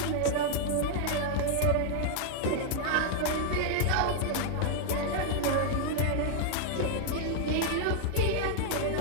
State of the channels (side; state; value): both; different; correlation -0.01